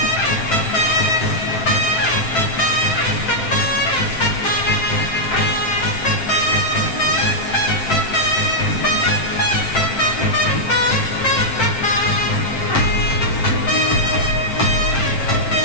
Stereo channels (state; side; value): late; right; 7.6 ms